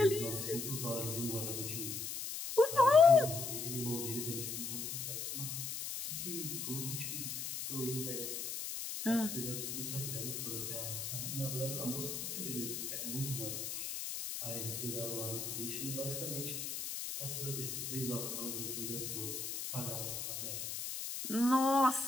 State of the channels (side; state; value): left; noise; hiss, 4 dB below the sound